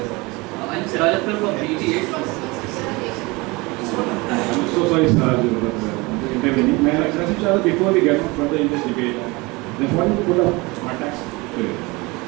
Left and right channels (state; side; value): quieter; left; 24.5 dB